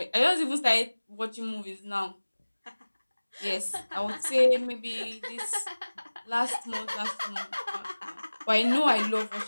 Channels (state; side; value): inverted; both; correlation -1.00